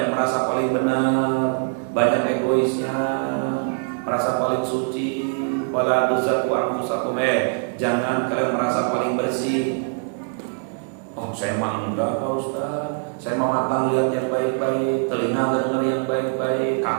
merasa paling benar, banyak egoisnya, merasa paling suci. Wala tuzakku anfusakum, jangan kalian merasa paling bersih. Oh saya mah enggak Pak Ustaz, saya mah mata lihat yang baik-baik, telinga dengar yang baik-baik,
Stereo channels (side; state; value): left; silent; 58 dB below the other